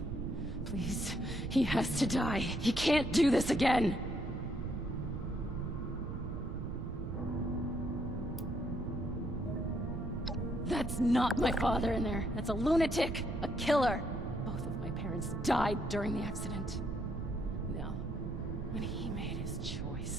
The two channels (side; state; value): right; noise; rumble, 5 dB below the sound